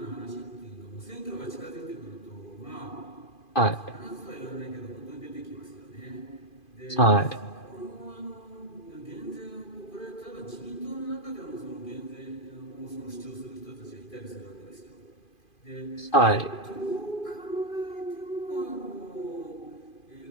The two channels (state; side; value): late; right; 2.5 ms